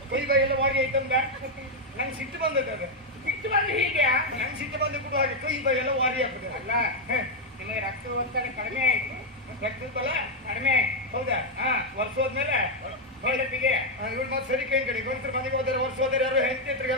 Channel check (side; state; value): both; normal; correlation 0.01